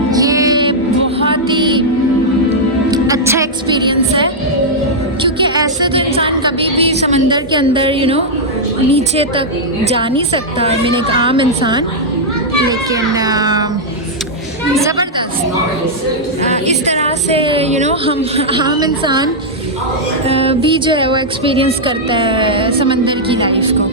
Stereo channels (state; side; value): normal; both; correlation -0.06